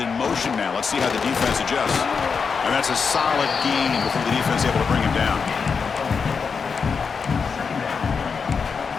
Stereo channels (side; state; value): right; quieter; 5.6 dB